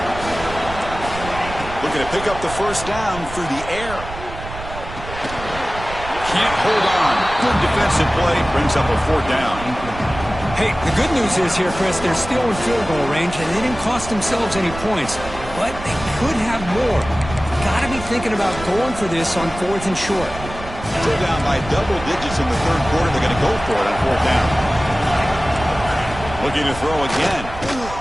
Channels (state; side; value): noise; right; rumble, 12 dB below the sound